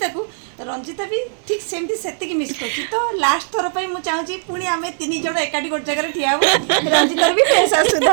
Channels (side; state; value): left; silent; 66 dB below the other